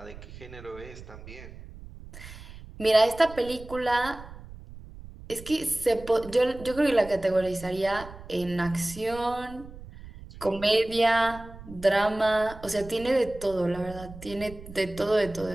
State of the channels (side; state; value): right; noise; rumble, 16 dB below the sound